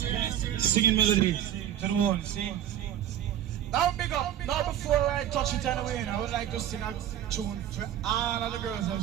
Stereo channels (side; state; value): left; quieter; 10.9 dB